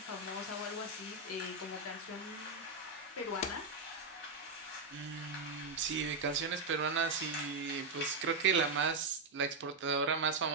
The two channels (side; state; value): left; quieter; 3.8 dB